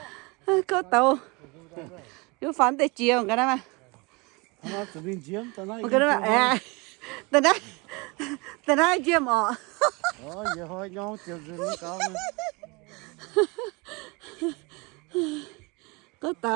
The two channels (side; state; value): left; quieter; 27.4 dB